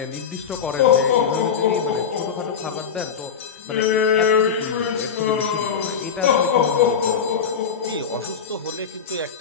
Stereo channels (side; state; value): right; quieter; 6.9 dB